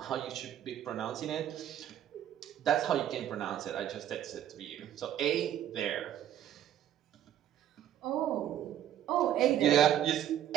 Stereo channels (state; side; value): quieter; left; 11.1 dB